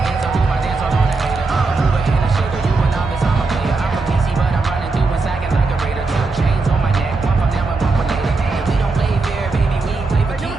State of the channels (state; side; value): quieter; left; 3.8 dB